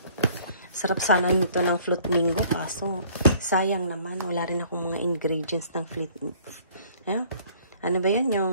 Sarap sana nito ng fruit mango. Kaso, sayang naman. Wala rin akong mga ingredients ng fruit. Ano ba yun?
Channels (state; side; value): inverted; both; correlation -0.55